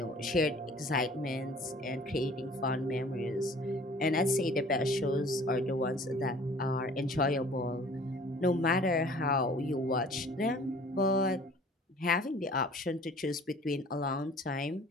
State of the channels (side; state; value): both; normal; correlation 0.50